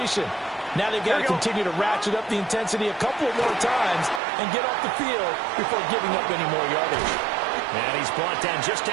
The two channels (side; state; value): left; drops out; at 4.2 s